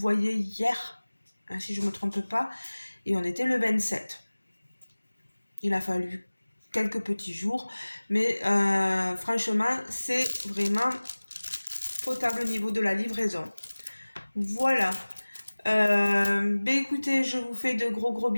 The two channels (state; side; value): inverted; both; correlation -1.00